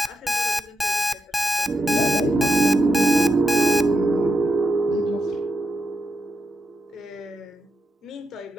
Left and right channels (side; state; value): both; normal; correlation 0.86